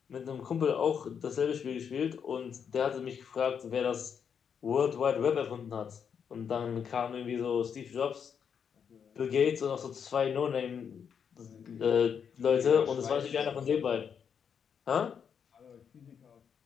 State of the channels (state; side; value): quieter; right; 7.3 dB